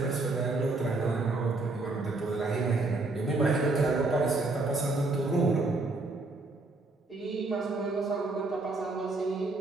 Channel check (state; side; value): quieter; left; 3.3 dB